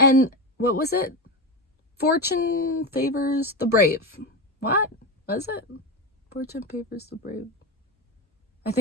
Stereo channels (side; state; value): both; normal; correlation 0.18